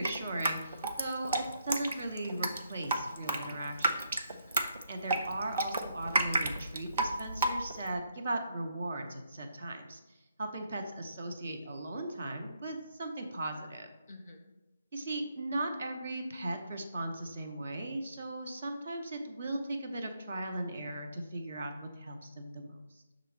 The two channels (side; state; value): both; inverted; correlation -0.76